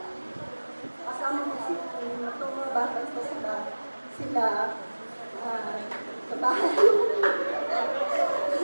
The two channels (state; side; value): inverted; both; correlation -1.00